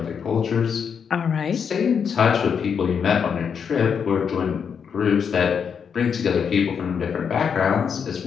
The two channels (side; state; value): right; quieter; 6.9 dB